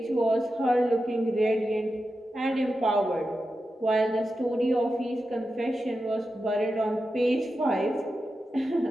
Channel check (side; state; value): both; normal; correlation 0.90